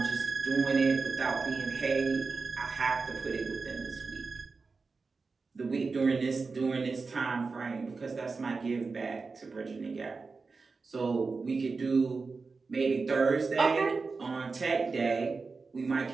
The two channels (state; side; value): quieter; left; 4.3 dB